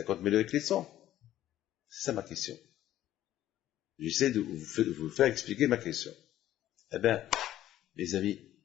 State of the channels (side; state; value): right; quieter; 13.0 dB